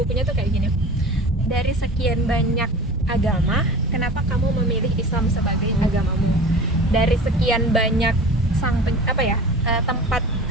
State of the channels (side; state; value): both; normal; correlation 0.37